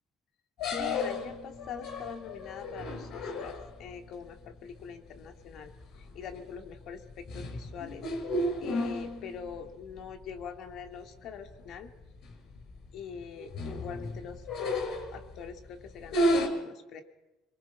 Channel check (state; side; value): normal; both; correlation 0.58